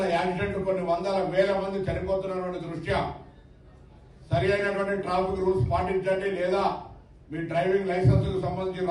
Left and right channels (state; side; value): identical; both; correlation 1.00